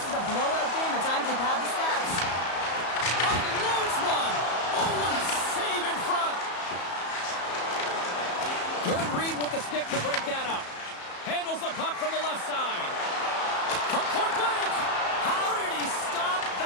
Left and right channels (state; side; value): late; right; 34 ms